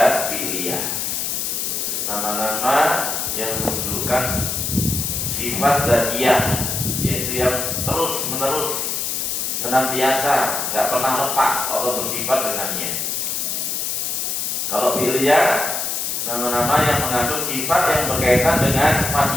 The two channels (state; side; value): noise; left; hiss, 1 dB below the sound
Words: fi'liyah. Nama-nama yang menunjukkan sifat dzatiyah, yaitu yang terus menerus, senantiasa, nggak pernah lepas Allah bersifat dengannya. Kalau fi'liyah, nama-nama yang mengandung sifat yang berkaitan dengan